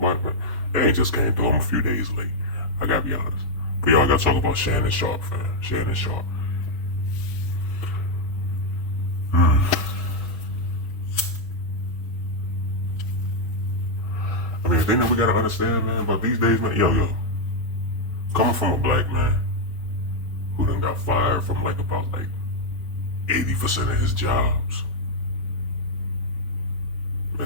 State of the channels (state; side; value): normal; both; correlation 0.00